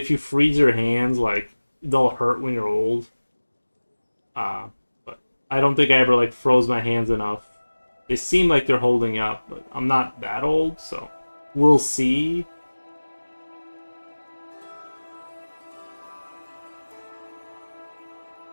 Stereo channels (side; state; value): both; inverted; correlation -1.00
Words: you freeze your hands, like they'll hurt when you're old. But I don't think I ever like froze my hands enough. They seem like they're holding up, but I'm not that old, so we'll see.